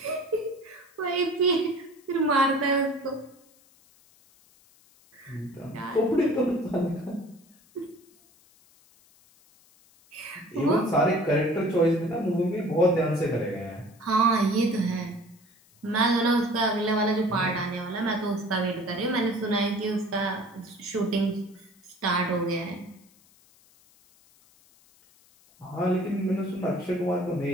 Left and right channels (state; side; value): noise; left; hiss, 30 dB below the sound